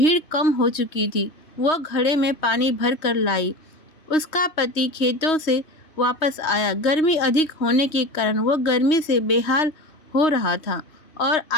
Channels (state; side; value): late; right; 3.2 ms